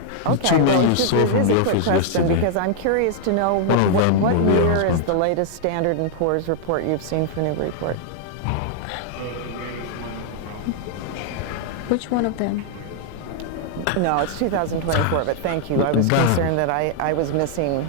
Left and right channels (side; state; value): both; different; correlation -0.01